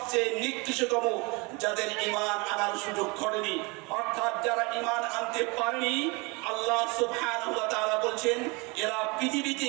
নিকৃষ্টতম, যাদের ঈমান আনার সুযোগ ঘটেনি, অর্থাৎ যারা ঈমান আনতে পারেনি। আল্লাহ সুবহানাহু ওয়া তাআলা বলছেন এরা পৃথিবীতে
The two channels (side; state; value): left; quieter; 27.6 dB